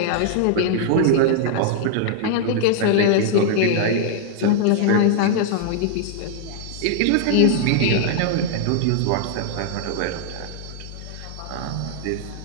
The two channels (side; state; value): both; different; correlation -0.01